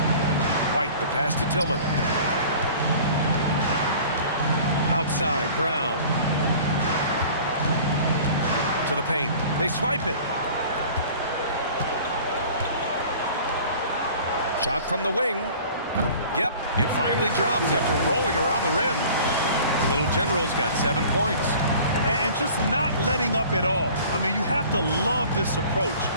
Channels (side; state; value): both; inverted; correlation -0.45